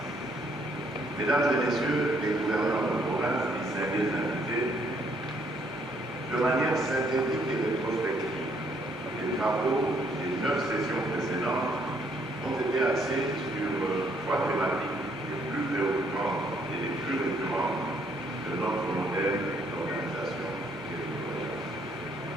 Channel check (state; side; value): normal; both; correlation 0.68